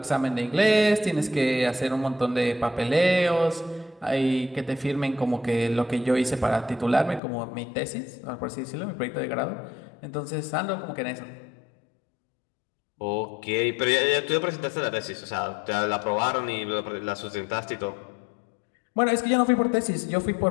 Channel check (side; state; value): right; drops out; at 7.2 s